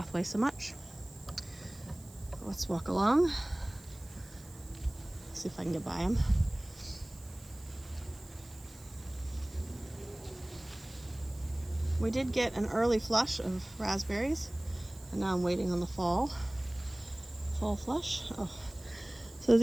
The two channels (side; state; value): right; noise; hiss, 22 dB below the sound